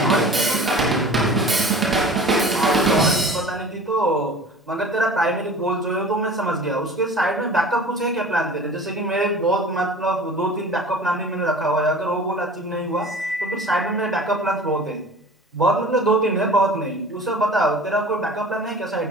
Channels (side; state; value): both; normal; correlation 0.41